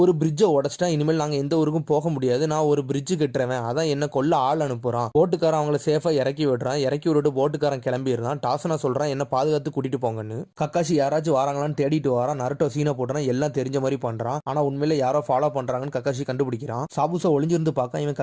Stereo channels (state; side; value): identical; both; correlation 1.00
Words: பிரிட்ஜை உடச்சிட்டான், இனிமேல் நாங்க எந்த ஊருக்கும் போக முடியாது, நான் ஒரு பிரிட்ஜ் கட்டுறவன், அதான் என்ன கொல்ல ஆள் அனுப்புறான். போட்டுக்காரன் அவங்கள சேஃபா இறக்கி விடுறான். இறக்கி விட்டுட்டு போட்டுக்காரன் கிளம்பிடுறான். டாஸ்னா சொல்றான், என்ன பாதுகாத்து கூட்டிட்டு போங்கன்னு. கக்காஷி யாராச்சும் வராங்களான்னு தேடிட்டு வரான். நருட்டோ சீனை போட்டுறான், எல்லாம் தெரிஞ்ச மாதிரி பண்றான். ஆனா உண்மையில யாரோ ஃபாலோ பண்றாங்கன்னு கக்காஷி கண்டுபிடிக்கிறான். சாபுசா ஒளிஞ்சிருந்து பார்க்க இவன்